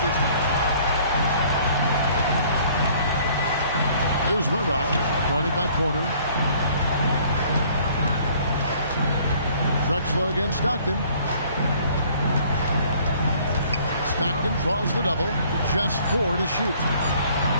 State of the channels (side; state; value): both; inverted; correlation -0.57